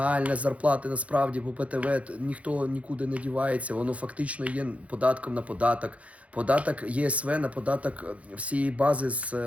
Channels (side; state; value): left; late; 0.065 ms